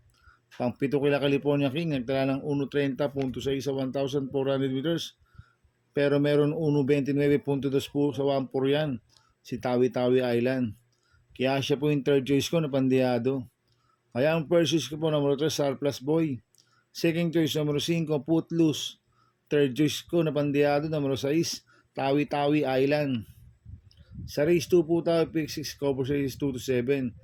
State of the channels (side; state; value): both; identical; correlation 1.00